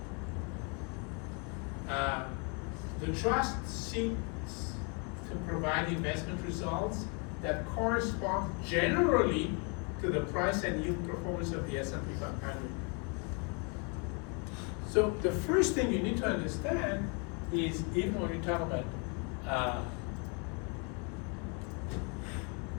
The trust seeks to provide investment results that correspond generally to the price and yield performance of the S&P 500. So the first thing you need to understand is, even when you talk about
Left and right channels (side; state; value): right; quieter; 35.5 dB